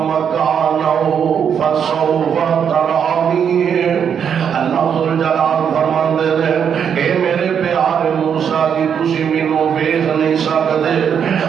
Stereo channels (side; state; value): left; quieter; 7.8 dB